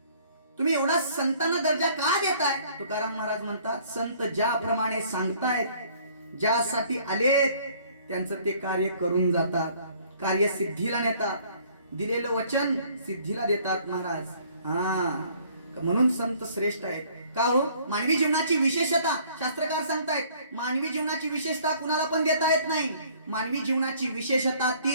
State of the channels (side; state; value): both; inverted; correlation -0.58